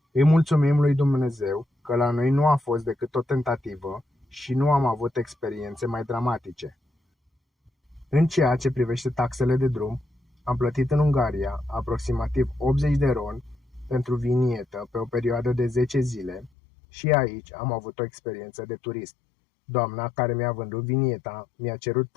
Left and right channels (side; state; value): right; drops out; at 16.5 s